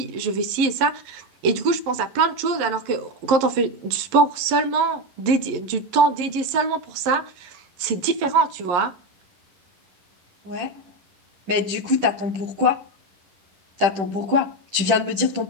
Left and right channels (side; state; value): left; late; 11 ms